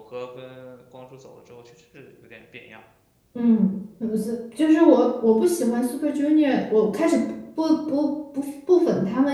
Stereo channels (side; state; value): both; identical; correlation 1.00